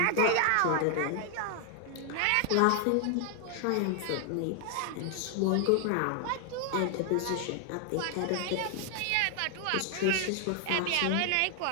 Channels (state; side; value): different; both; correlation 0.00